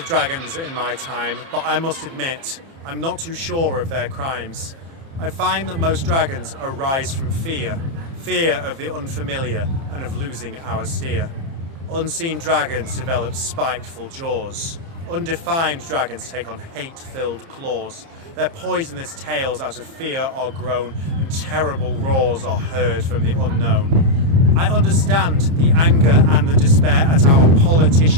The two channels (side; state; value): left; late; 30 ms